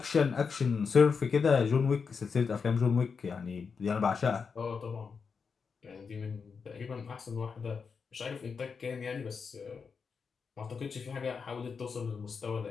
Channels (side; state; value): right; quieter; 5.6 dB